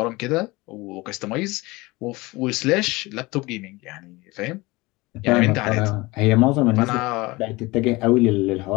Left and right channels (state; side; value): quieter; right; 22.3 dB